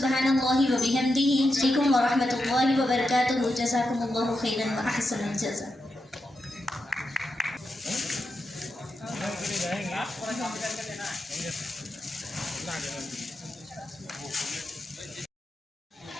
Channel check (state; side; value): normal; both; correlation 0.87